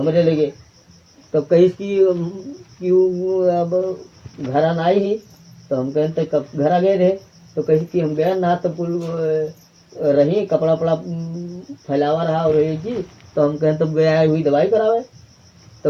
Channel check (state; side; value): identical; both; correlation 1.00